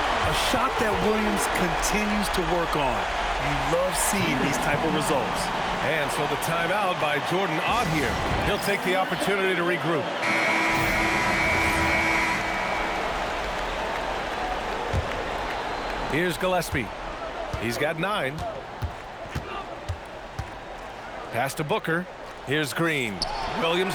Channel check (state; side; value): identical; both; correlation 1.00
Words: A shot that Williams continues to work on. You love seeing these type of results. And so the timeout by Jordan Ott here. He'll take the opportunity to regroup. Here's Gillespie. He's got 9. Pass to Booker. Here's Green.